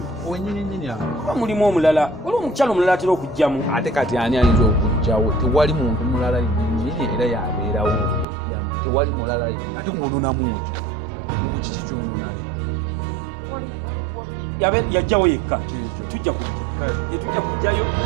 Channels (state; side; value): drops out; left; at 8.2 s